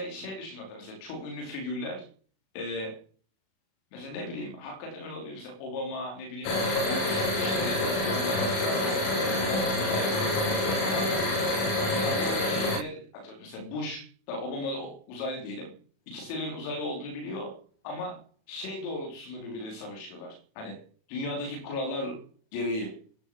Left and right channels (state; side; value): late; right; 37 ms